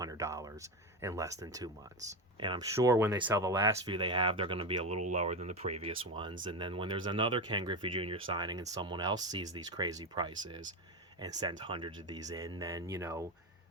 in less than 2 months. And I'm sure when they sell the last few they have, they're going to be a little lower than the previous ones. And then when there's another Ken Griffey Jr. signing and someone else sees these crazy prices and sends hundreds of these in, then,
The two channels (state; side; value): normal; both; correlation 0.17